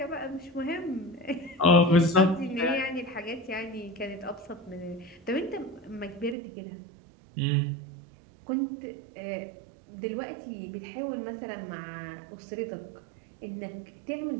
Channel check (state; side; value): drops out; left; at 6.4 s